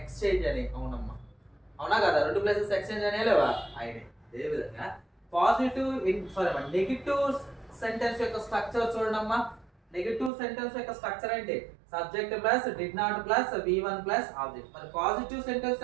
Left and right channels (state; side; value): drops out; left; at 10.3 s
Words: అని, అవునమ్మా అవునా కదా, రెండు ప్లేసెస్ ఎక్స్చేంజ్ అనే లేవా అయినాయి. అదే విధంగా పాజిటివ్ నెగిటివ్ సెంటెన్స్ యొక్క స్ట్రక్చర్ చూడమ్మా. నెగిటివ్ సెంటెన్స్ యొక్క స్ట్రక్చర్ ఏంటి, subject plus did not plus V1 plus object. మరి పాజిటివ్ సెంటెన్స్